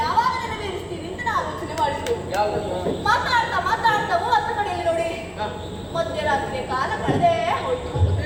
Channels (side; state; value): both; identical; correlation 1.00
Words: ಯಾವಾಗ ನೆರವೇರಿಸ್ತೀರಿ ಅಂತ ನಾನು ಆಲೋಚನೆ ಮಾಡಿದ್ದು. ಮಾತಾಡ್ತಾ ಮಾತಾಡ್ತಾ 30 ಕಡೆಯಲ್ಲಿ ನೋಡಿ ಮಧ್ಯರಾತ್ರಿಯ ಕಾಲ ಕಳೆದೇ ಹೋಯ್ತು.